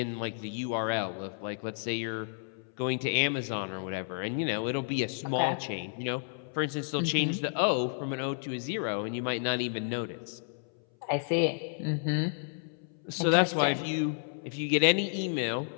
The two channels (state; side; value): silent; right; 57 dB below the other